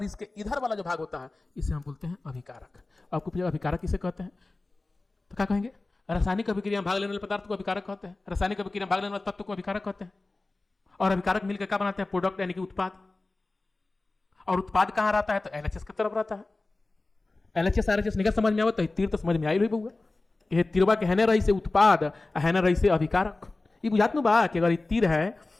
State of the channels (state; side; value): quieter; right; 3.2 dB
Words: इसके इधर वाला जो भाग होता है इसे हम बोलते हैं अभिकारक। आपको पूछेगा अभिकारक किसे कहते हैं, तो क्या कहेंगे? रासायनिक अभिक्रिया में भाग लेने वाले पदार्थ को अभिकारक कहते हैं, रासायनिक अभिक्रिया में भाग लेने वाले तत्व को अभिकारक कहते हैं, और अभिकारक मिलकर क्या बनाते हैं? प्रोडक्ट यानी कि उत्पाद। और उत्पाद कहां रहता है? तो एलएचएस की तरफ रहता है। एलएचएस आरएचएस निकल समझ में आवत है, तीर तो समझ में आई रही बउआ, ये तिरवा के हैने रही से उत्पाद, हैने रही से अभिकारक। ये बुझात नु बा कि अगर ये तीर है